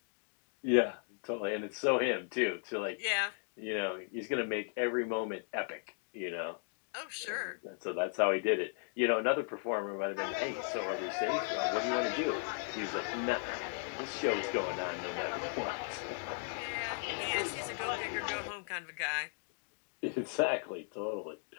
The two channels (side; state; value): right; silent; 54 dB below the other